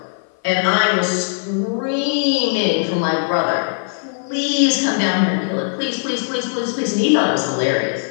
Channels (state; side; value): silent; right; 57 dB below the other